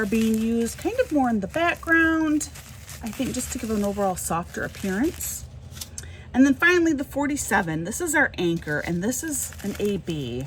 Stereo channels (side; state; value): both; identical; correlation 1.00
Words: being used kind of more in the background, I think, just to give an overall softer appearance. And then finally the 47, this is our anchor, and this is an AB.